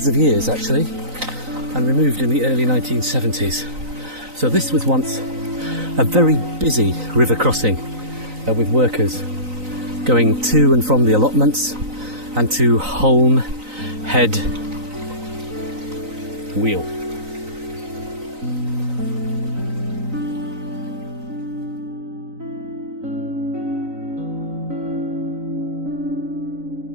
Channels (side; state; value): left; late; 3.9 ms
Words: of years, actually, and removed in the early 1970s. So this was once a very busy river crossing with workers going to and from the allotments and to Holme Head Wheel.